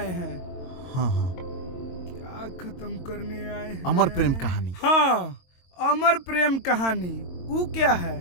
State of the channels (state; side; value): late; right; 22 ms